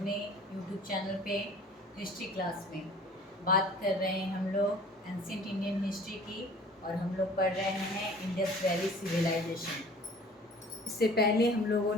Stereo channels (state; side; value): normal; both; correlation 0.48